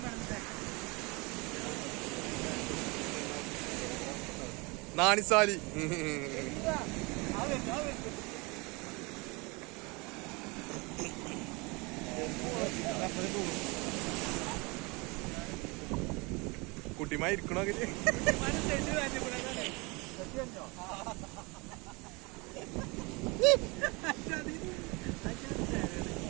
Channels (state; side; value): quieter; left; 27.1 dB